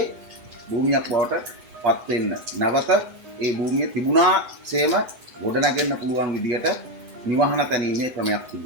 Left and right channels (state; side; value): late; left; 8.1 ms